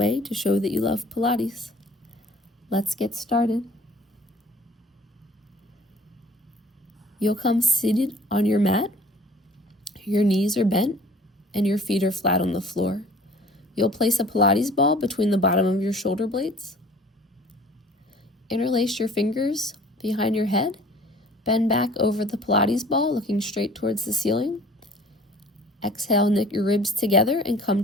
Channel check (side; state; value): both; normal; correlation 0.50